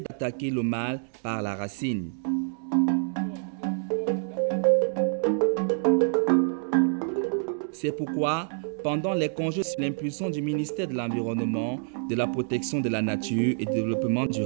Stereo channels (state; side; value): silent; left; digital silence